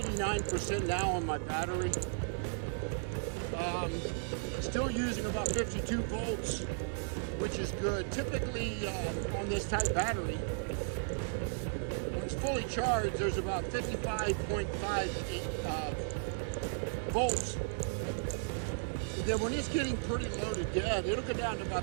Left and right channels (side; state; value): left; silent; 54 dB below the other